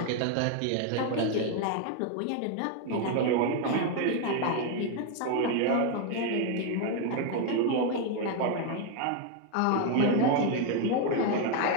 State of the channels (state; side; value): different; both; correlation 0.01